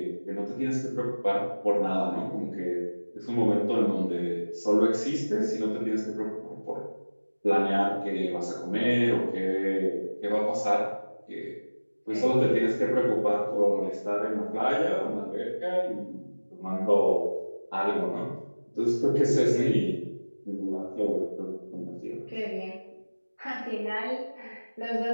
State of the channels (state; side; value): inverted; both; correlation -1.00